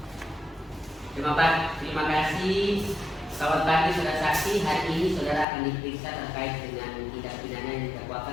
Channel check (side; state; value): right; drops out; at 5.5 s